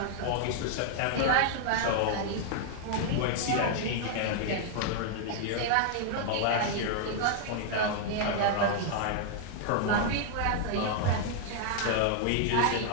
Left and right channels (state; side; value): different; both; correlation -0.01